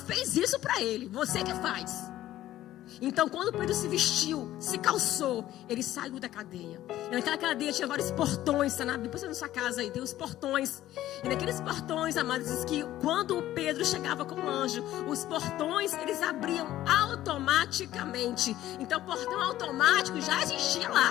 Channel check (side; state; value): right; quieter; 13.9 dB